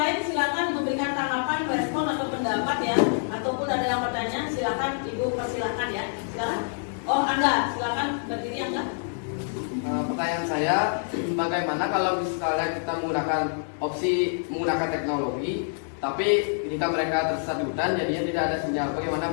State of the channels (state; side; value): silent; right; digital silence